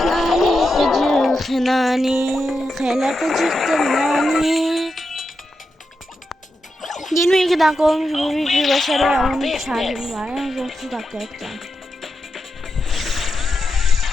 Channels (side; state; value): both; normal; correlation 0.87